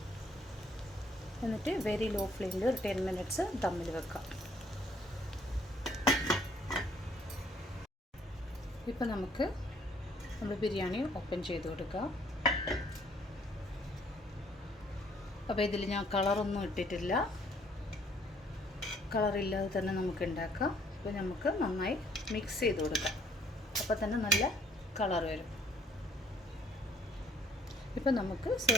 എന്നിട്ട് വെരി ലോ ഫ്ലെയിമിൽ ഒരു 10 മിനിറ്റ്സ് ദമ്മിൽ വെക്കാം. ഇപ്പോൾ നമ്മൾ ബിരിയാണി ഓപ്പൺ ചെയ്ത് കൊടുക്കാം. അപ്പോൾ ഇതിൽ ഞാൻ കളറൊന്നും ഇട്ടിട്ടില്ല. കളറില്ലാതെ തന്നെ നമുക്ക് ഉണ്ടാക്കാം. അപ്പോൾ നമുക്ക് നന്നായി മിക്സ് ചെയ്ത് കൊടുക്കാം. അപ്പോൾ തന്നെ നല്ല കളർ വരും. ഇപ്പോൾ നമുക്ക്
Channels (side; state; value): both; normal; correlation 0.62